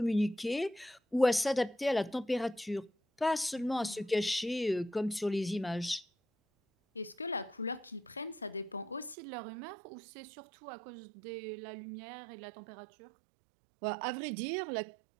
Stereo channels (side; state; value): left; drops out; at 9.2 s